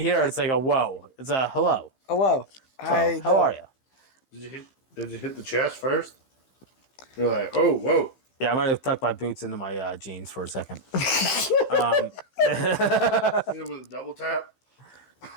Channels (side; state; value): right; late; 15 ms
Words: here, it's like a whoa. It's a hello. Hello. So, how are you? Did you hit the chest first? You're like, oh, whoa. Yeah, I might have tucked my boots into my jeans for a second. Hit it with a double tap.